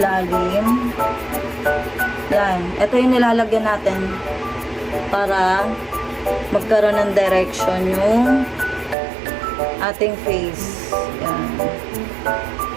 Yan. Ito yung nilalagyan natin para magkaroon ng direction yung ating face. Yan.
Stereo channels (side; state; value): left; drops out; at 9.0 s